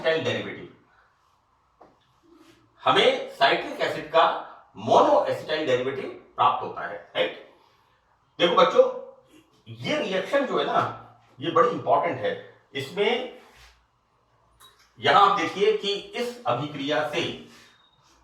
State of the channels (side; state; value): both; identical; correlation 1.00